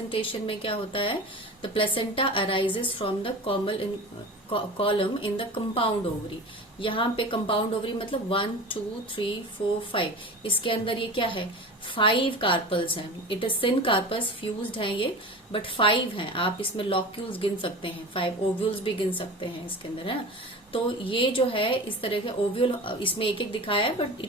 में क्या होता है, the placenta arises from the column in the compound ovary. यहाँ पे कंपाउंड ओवरी मतलब 1 2 3 4 5, इसके अंदर ये क्या है, 5 कार्पल्स हैं. It is syncarpous, fused हैं ये, बट 5 हैं. आप इसमें लॉक्यूल्स गिन सकते हैं, 5 ओव्यूल्स भी गिन सकते हैं इसके अंदर, है. तो ये जो है इस तरह के ओव्यूल, इसमें एक एक दिखाया है but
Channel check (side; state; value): both; normal; correlation 0.33